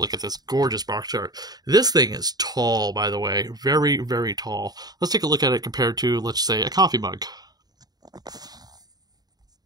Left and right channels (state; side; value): late; left; 0.19 ms